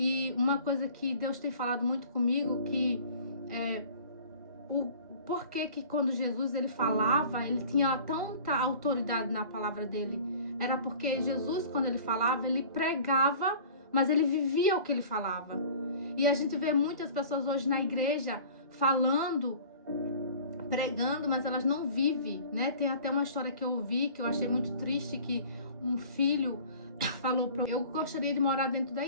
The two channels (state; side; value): inverted; both; correlation -0.46